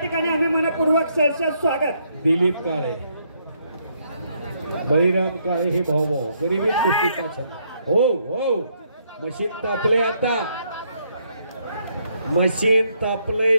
आम्ही मनपूर्वक सहर्ष स्वागत। दिलीप काळे, बळीराम काळे हे भाऊ भाऊ गरीबी कुस्तीचा छंद। हो हो मशीन तापले। आता मशीन तापले।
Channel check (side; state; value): both; inverted; correlation -0.73